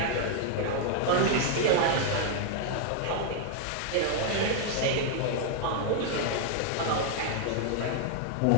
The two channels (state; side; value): different; both; correlation 0.00